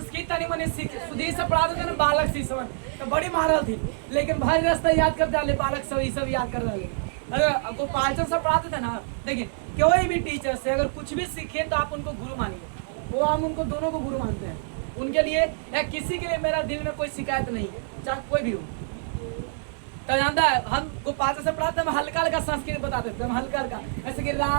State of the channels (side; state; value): left; silent; digital silence